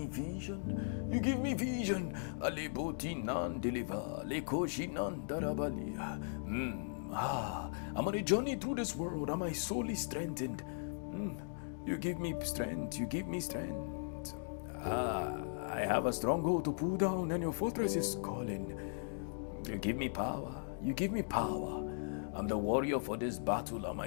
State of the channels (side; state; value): right; silent; digital silence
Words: vision. You give me vision. Aleboti nan deliver. Lekoshi nan darabali. I'm on a journey through this world and my soul is strengthened. You give me strength. You give me strength. I have a stronghold to pull down and your fortress is calling. You give me power. You give me power. I'm the warrior for this battle and